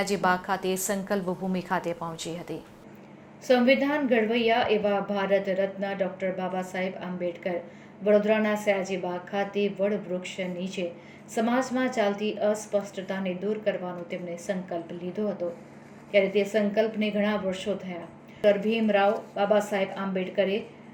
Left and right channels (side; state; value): both; identical; correlation 1.00